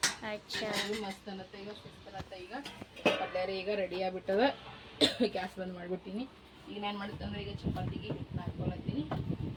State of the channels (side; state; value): both; identical; correlation 1.00